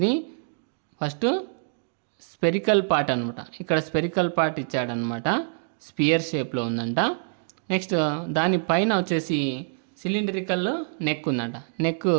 ఫస్ట్ స్పెరికల్ పార్ట్ అనమాట. ఇక్కడ స్పెరికల్ పార్ట్ ఇచ్చాడనమాట, స్పియర్ షేప్లో ఉందంట. నెక్స్ట్ దానిపైన వచ్చేసి సిలిండ్రికల్ నెక్ ఉందంట. నెక్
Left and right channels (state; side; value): silent; left; digital silence